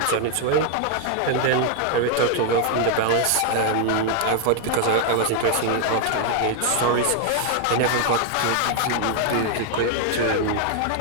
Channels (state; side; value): different; both; correlation 0.00